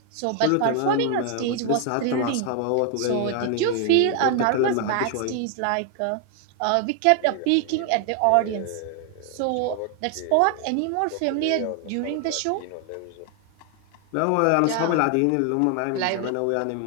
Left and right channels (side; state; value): both; different; correlation 0.00